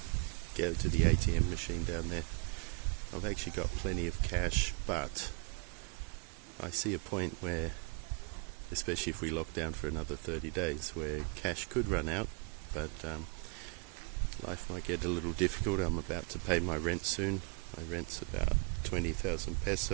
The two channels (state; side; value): quieter; left; 35.4 dB